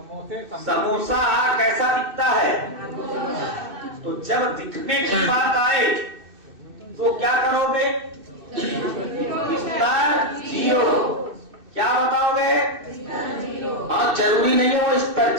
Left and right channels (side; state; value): left; late; 2.6 ms